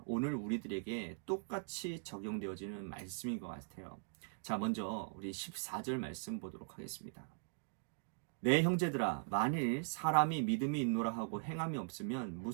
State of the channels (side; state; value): left; silent; digital silence